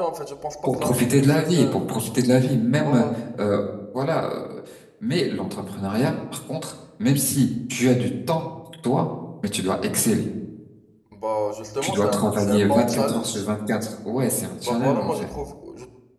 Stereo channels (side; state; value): both; identical; correlation 1.00